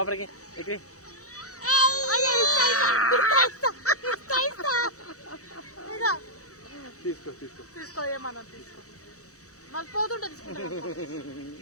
ఎగిరి తీసుకో తీసుకో తీసుకో ఏమన్నా తీసుకో మళ్ళీ పోతుంటే తీసుకుంటా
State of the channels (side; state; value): right; late; 0.65 ms